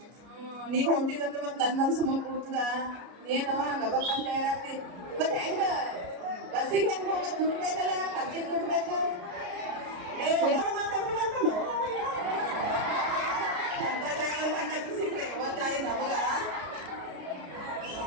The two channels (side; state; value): left; late; 33 ms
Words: ನೀವ್ ಹೊಂದಿದಂದ್ರೆ ಮತ್ತೆ ನನ್ ಮನ್ಸು ಮುಂದೆ ಕೂಡ್ತದ ಏನೋ ಗಬಕ್ಕಂತ ಇರಾಕ್ತಿ ಮತ್ತೆ ಹೆಂಗ ಬಸ್ಸಿಗೆ ಹೆಂಗ್ ಹೋಗ ದುಡ್ಡು ಬೇಕಲ್ಲ ಖರ್ಚಿಗೆ ದುಡ್ಡು ಬೇಕು ಮಾತಾಡ್ಬೇಕಂತ ಅಂತ ಡ್ರೈವರ್ ಕಂಡಕ್ಟರ್ ಸಿಕ್ಕ್ರೆ ಗೊತ್ತಾಯಿ ನಮಗ